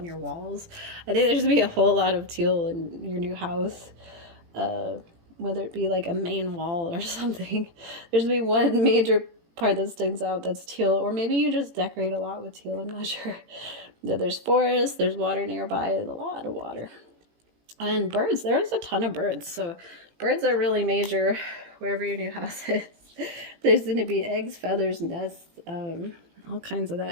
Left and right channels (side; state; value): left; late; 18 ms